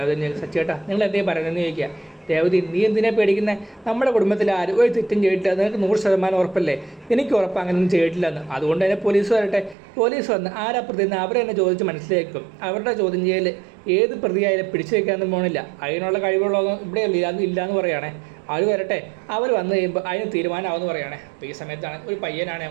സച്ചിയേട്ടാ നിങ്ങൾ എന്തേ പറയുന്നതെന്ന് ചോദിക്കുക. രേവതി, നീ എന്തിനാ പേടിക്കുന്നത്? നമ്മുടെ കുടുംബത്തിൽ ആരും ഒരു തെറ്റും ചെയ്തിട്ടില്ല, നിനക്ക് 100% ഉറപ്പല്ലേ? എനിക്ക് ഉറപ്പ് അങ്ങനെയൊന്നും ചെയ്തിട്ടില്ലെന്ന്. അതുകൊണ്ട് തന്നെ പോലീസ് വരട്ടെ. പോലീസ് വന്ന് ആരാ പ്രതിന്ന് അവരെ തന്നെ ചോദിച്ച് മനസ്സിലാക്കും. അവരുടെ ചോദ്യം ചെയ്യൽ ഏത് പ്രതിയായാലും പിടിച്ചു വയ്ക്കാനൊന്നും പോകണില്ല. അതിനുള്ള കഴിവുള്ളതൊന്നും ഇവിടെ ഇല്ലയെന്ന് പറയുകയാണേ. അവർ വരട്ടെ, അവർ വന്നു കഴിയുമ്പോൾ അതിന് തീരുമാനമാവെന്ന് പറയുകയാണേ. അപ്പോൾ ഈ സമയത്താണ് ഒരു പയ്യനാണ്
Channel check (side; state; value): left; drops out; at 9.8 s